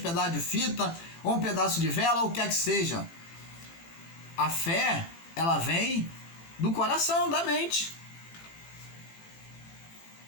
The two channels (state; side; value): late; right; 18 ms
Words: pedaço de fita, ou um pedaço de vela, ou o que quer que seja. A fé, ela vem do coração, da mente.